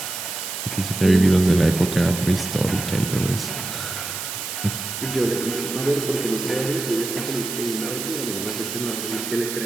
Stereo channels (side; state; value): right; noise; hiss, 6 dB below the sound